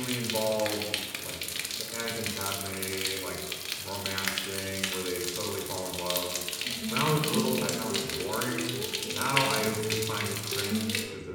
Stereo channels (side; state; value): both; identical; correlation 1.00